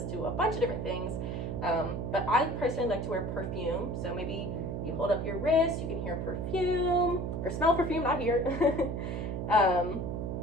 to a bunch of different things. But I personally like to wear perfume. So maybe you hold up your wrist, you can hear perfume, or smell perfume, not here.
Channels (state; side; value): noise; right; hum, 3 dB below the sound